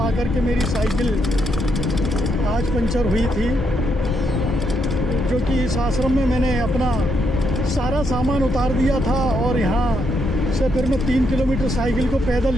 के मेरी साइकिल आज पंचर हुई थी, जो कि इस आश्रम में मैंने अपना सारा सामान उतार दिया था। और यहाँ से फिर मैं 3 किलोमीटर साइकिल को पैदल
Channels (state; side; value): normal; both; correlation 0.77